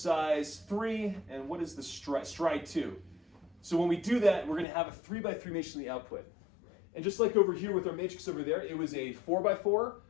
3, and what is the stride 2? So when we do that, we're going to have a 3 by 3 matrix in the output. And just like over here with our matrix over there, it was a 4 by 4,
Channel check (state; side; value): drops out; right; at 4.7 s